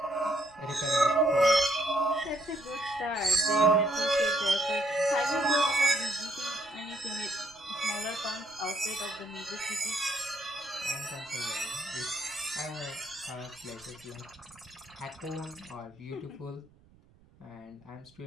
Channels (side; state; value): right; noise; rumble, 29 dB below the sound